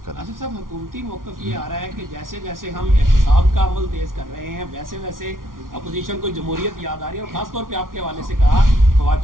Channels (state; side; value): late; left; 0.90 ms